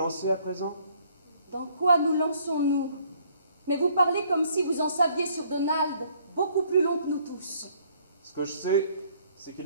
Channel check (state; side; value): inverted; both; correlation -0.63